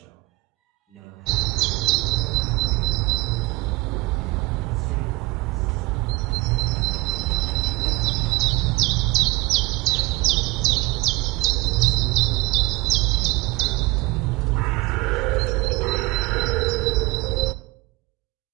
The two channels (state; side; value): quieter; left; 23.5 dB